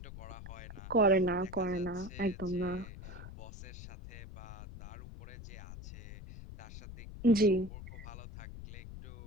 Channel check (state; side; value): noise; left; rumble, 11 dB below the sound